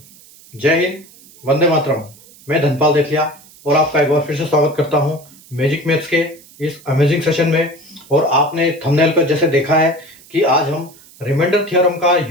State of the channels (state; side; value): noise; right; hiss, 24 dB below the sound